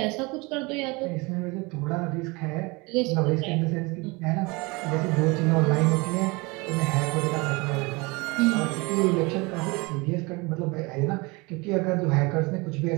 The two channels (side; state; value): left; quieter; 26.0 dB